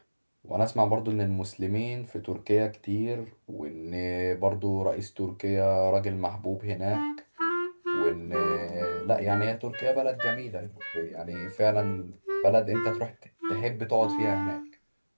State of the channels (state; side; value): inverted; both; correlation -1.00